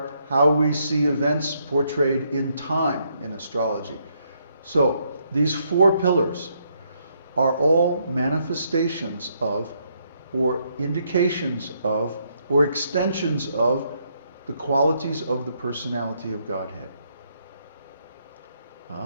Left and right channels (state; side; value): inverted; both; correlation -0.74